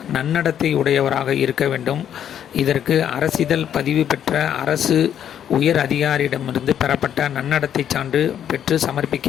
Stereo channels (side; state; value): right; quieter; 9.6 dB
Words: நன்னடத்தை உடையவராக இருக்க வேண்டும். இதற்கு அரசிதழ் பதிவு பெற்ற அரசு உயர் அதிகாரியிடமிருந்து பெறப்பட்ட நன்னடத்தை சான்று பெற்று சமர்ப்பிக்க